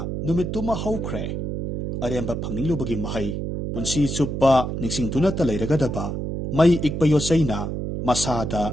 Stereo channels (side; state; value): right; noise; hum, 3 dB below the sound